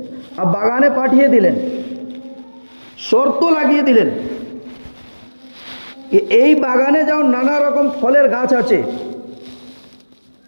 আর বাগানে পাঠিয়ে দিলেন, শর্ত লাগিয়ে দিলেন কি এই বাগানে যাও, নানা রকম ফলের গাছ আছে,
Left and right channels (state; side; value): inverted; both; correlation -1.00